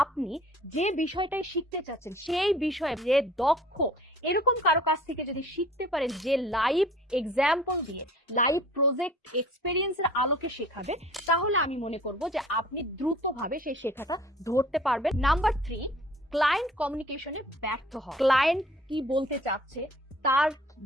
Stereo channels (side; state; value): both; normal; correlation 0.50